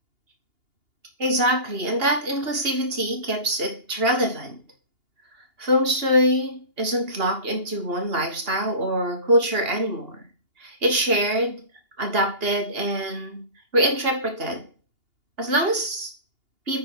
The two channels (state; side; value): late; left; 2.8 ms